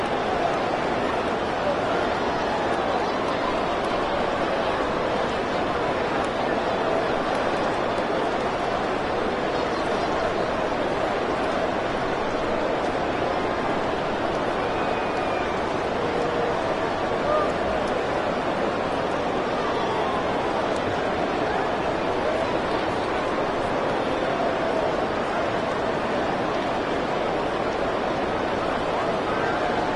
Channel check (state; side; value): identical; both; correlation 1.00